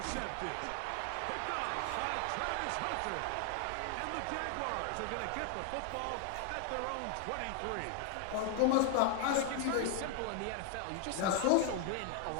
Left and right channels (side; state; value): both; different; correlation 0.00